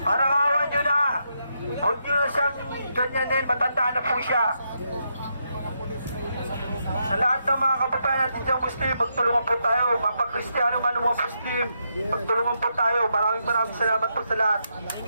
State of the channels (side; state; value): both; inverted; correlation -0.81